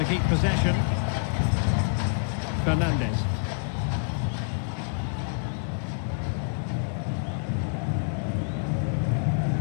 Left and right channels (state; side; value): silent; right; 60 dB below the other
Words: keep possession. Fernandes.